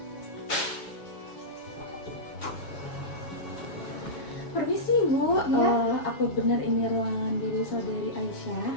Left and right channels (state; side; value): late; right; 7.6 ms